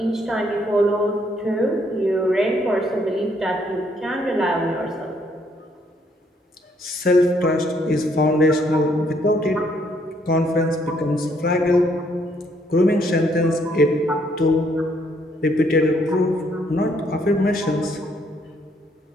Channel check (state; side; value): normal; both; correlation 0.69